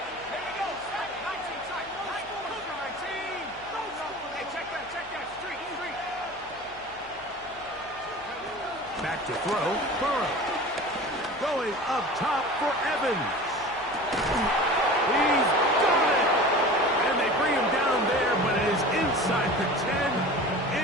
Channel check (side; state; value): left; noise; hum, 24 dB below the sound